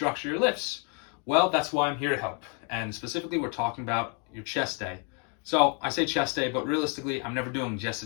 your lifts. Well, that's why I'm here to help, and specifically we're talking about your chest day. So I say chest day, but realistically I'm never doing just a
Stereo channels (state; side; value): quieter; right; 37.9 dB